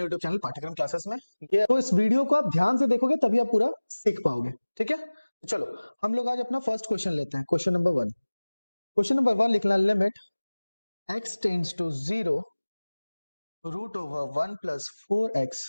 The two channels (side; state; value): both; inverted; correlation -1.00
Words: यूट्यूब चैनल पाठ्यक्रम क्लासेस में। ये तो इस वीडियो को आप ध्यान से देखोगे तभी आप पूरा सीख पाओगे। ठीक है, तो चलो हम लोग आज अपना फर्स्ट क्वेश्चन लेते हैं। Question number one. Question number one लिखना, limit x tends to 0 root over 1 plus 4x